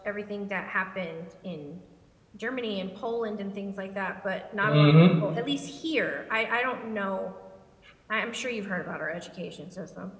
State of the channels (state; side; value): identical; both; correlation 1.00